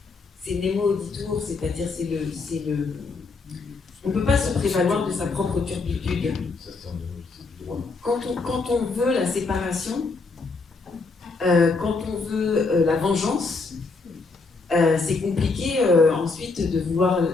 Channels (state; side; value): quieter; right; 4.0 dB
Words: c'est nemo auditur, c'est-à-dire on ne peut pas se prévaloir de sa propre turpitude. Quand on veut la séparation, quand on veut la vengeance, c'est compliqué ensuite de vouloir